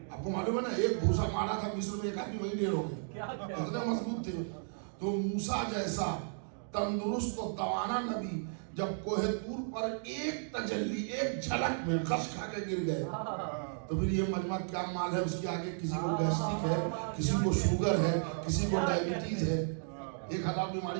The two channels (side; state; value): left; silent; digital silence